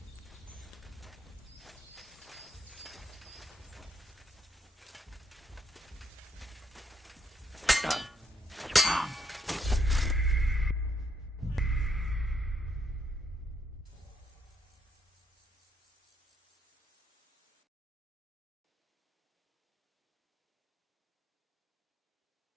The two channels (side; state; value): both; normal; correlation 0.75